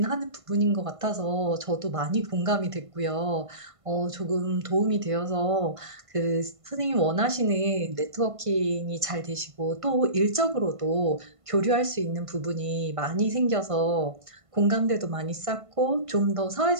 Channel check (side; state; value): left; late; 1.5 ms